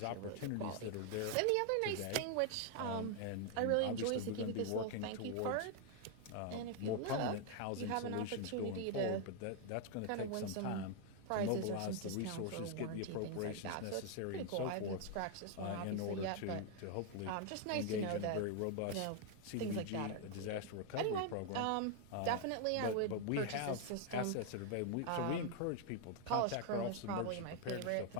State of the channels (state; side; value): different; both; correlation 0.00